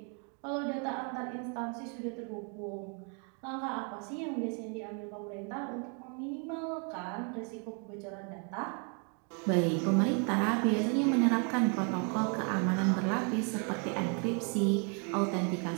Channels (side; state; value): left; quieter; 38.0 dB